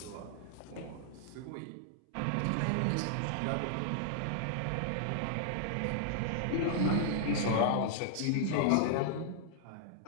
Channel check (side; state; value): both; different; correlation -0.01